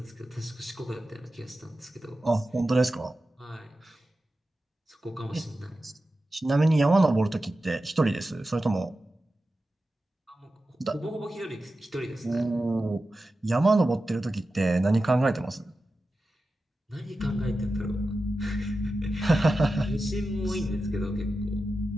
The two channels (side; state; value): both; normal; correlation 0.93